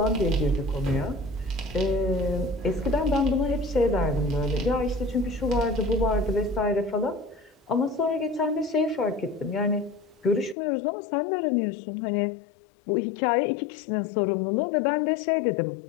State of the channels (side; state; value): right; drops out; at 10.6 s